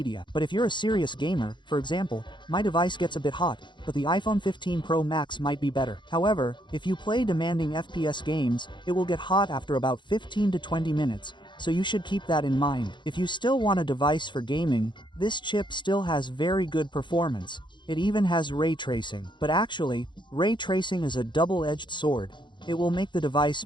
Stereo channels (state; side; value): late; right; 0.23 ms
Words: But if you're a serious gamer, for example, my device gets a bit hot, but the iPhone 15 Pro Max might be better. However, if you play demanding FPS games, it will get hot after about 15 to 20 minutes, so you should keep that in mind. If you still want a device for gaming, this chip still has very good performance. It even has ray tracing. But actually, ray tracing is a double-edged sword. It will make the device